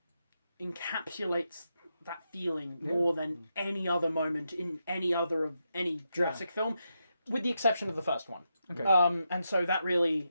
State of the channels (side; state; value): both; inverted; correlation -0.85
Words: encapsulates that feeling more than any other moment in any Jurassic film. With the exception of the first one. Okay. And so that really,